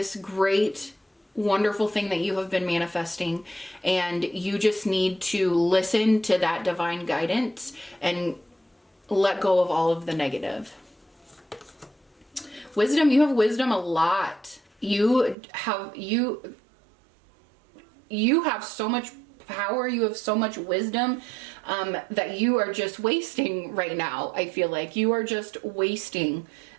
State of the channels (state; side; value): drops out; left; at 15.4 s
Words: great, wonderful thing that you have been manifesting, and you just need to listen to that divine guidance and let go of all of the negative. Wisdom, you have wisdom a lot. You have so much power, you have so much wisdom that you are just wasting right now. I feel like you are just wasting